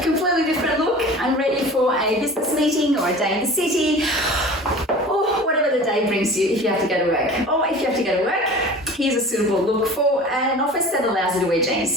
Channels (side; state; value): both; normal; correlation 0.39